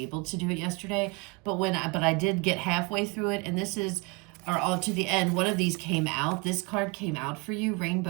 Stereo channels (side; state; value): left; quieter; 27.7 dB